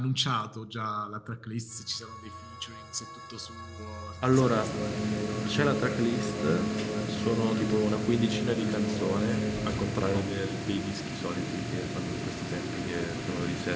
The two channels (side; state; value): both; identical; correlation 1.00